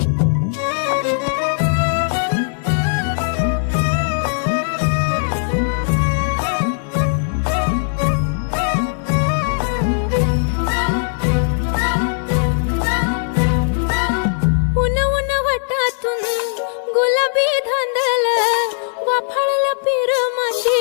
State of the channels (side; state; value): right; silent; digital silence